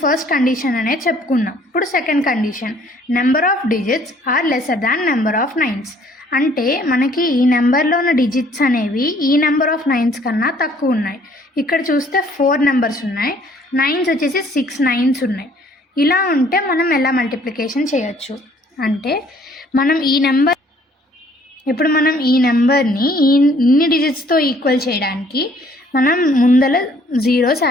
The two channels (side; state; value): both; normal; correlation 0.60